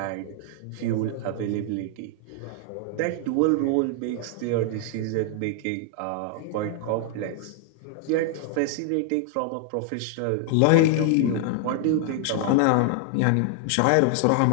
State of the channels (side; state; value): both; different; correlation 0.00